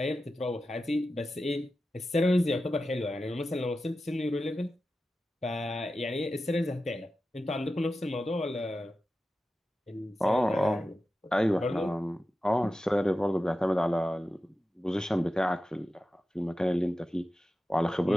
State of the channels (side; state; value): both; normal; correlation 0.92